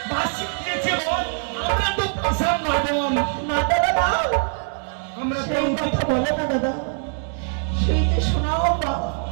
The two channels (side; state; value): left; silent; 64 dB below the other